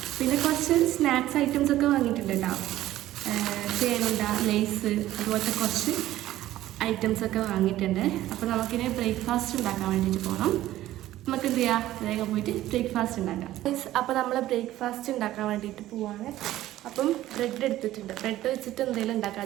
പിന്നെ കുറച്ച് സ്നാക്സ് ഐറ്റംസ് ഒക്കെ വാങ്ങിയിട്ടുണ്ട് കേട്ടോ. ചേനുണ്ട, ലേസ്, അതുപോലത്തെ കുറച്ച് ഐറ്റംസ് ഒക്കെ വാങ്ങിയിട്ടുണ്ട്. അപ്പോൾ നമുക്കിനി ബ്രേക്ക്ഫാസ്റ്റ് ഉണ്ടാക്കാൻ വേണ്ടിയിട്ട് പോകണം. നമുക്ക് എന്ത് ചെയ്യാം, വേഗം പോയിട്ട് ബ്രേക്ക്ഫാസ്റ്റ് ഉണ്ടാക്കാം. അപ്പോൾ നമ്മൾ ബ്രേക്ക്ഫാസ്റ്റ് ഉണ്ടാക്കാൻ വേണ്ടിയിട്ട് പോവാണ്. അപ്പം ബ്രെഡ് എടുത്തിട്ടുണ്ട്. ബ്രെഡ് വെച്ചിട്ട് എന്തെങ്കിലും ഉണ്ടാക്കാൻ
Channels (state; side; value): quieter; left; 14.6 dB